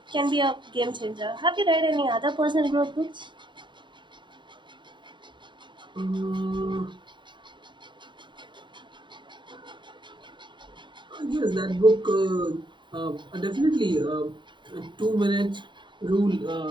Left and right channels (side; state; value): left; late; 0.23 ms